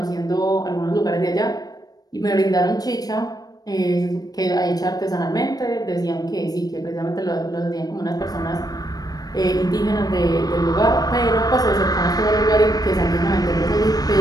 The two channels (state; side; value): late; right; 0.19 ms